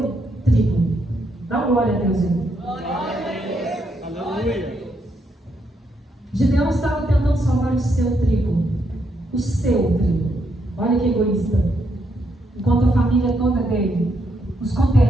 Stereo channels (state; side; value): normal; both; correlation 0.77